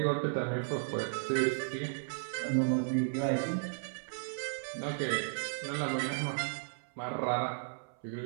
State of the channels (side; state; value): left; silent; 55 dB below the other